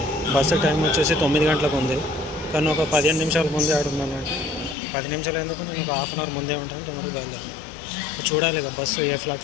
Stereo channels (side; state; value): right; drops out; at 4.8 s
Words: బస్సు టైం వచ్చేసి 9 గంటలకు ఉంది, కానీ ఒక 15 నిమిషాల ముందే ఆడున్నాను. 10 నిమిషాలు ఎందుకు, నేను ఒక హాఫ్ అన్ అవర్ ముందే ఉంటాను. తొందరగా బయలుదేరాను. చూడాలి ఇక బస్సు ఏ